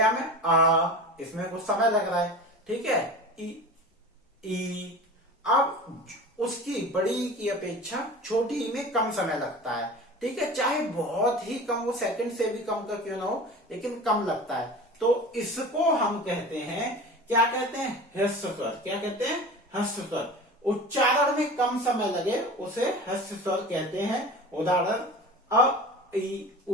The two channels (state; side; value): normal; both; correlation 0.35